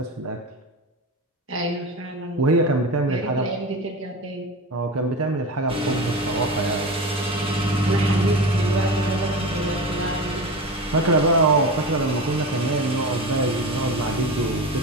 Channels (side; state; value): both; normal; correlation 0.27